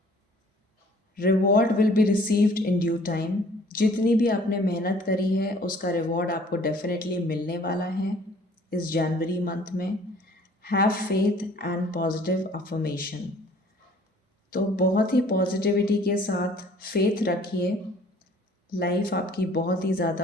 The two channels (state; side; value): normal; both; correlation 0.55